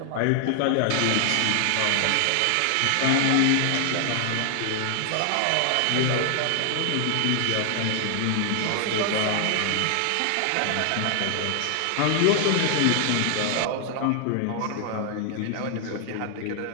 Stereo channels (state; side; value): different; both; correlation 0.00